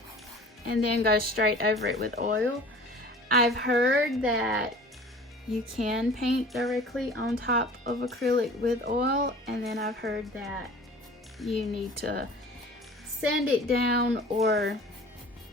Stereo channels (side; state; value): both; normal; correlation 0.44